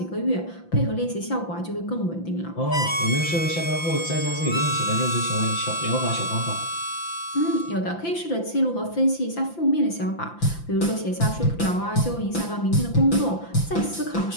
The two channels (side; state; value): right; late; 5.9 ms